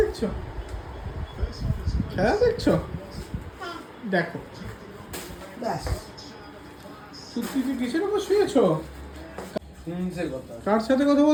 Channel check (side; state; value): both; identical; correlation 1.00